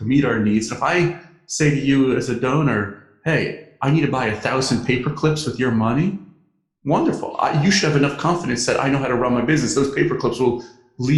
meet our needs. And if I say to you as a donor, hey, I need to buy 1,000 paper clips with your money, wonderful. You should have enough confidence that I know how to run my business. Those paper clips will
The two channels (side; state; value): both; identical; correlation 1.00